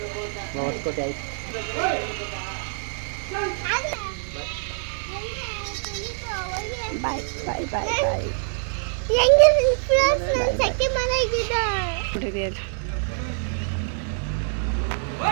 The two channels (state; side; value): silent; left; digital silence